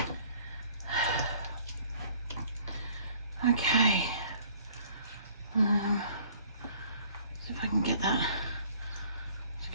Okay, see if I can get that, just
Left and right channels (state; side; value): inverted; both; correlation -0.56